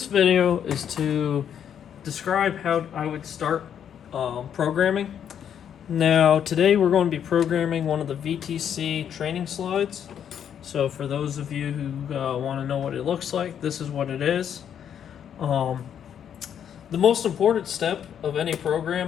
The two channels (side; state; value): right; quieter; 8.9 dB